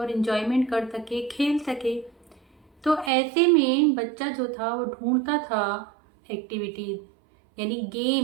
इन्जॉयमेंट कर सके, खेल सके। तो ऐसे में बच्चा जो था वो ढूंढता था एक्टिविटीज़, यानी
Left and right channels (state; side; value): drops out; left; at 3.1 s